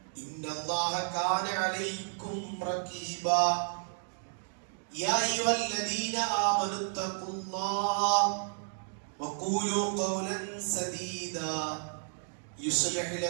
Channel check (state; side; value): silent; left; digital silence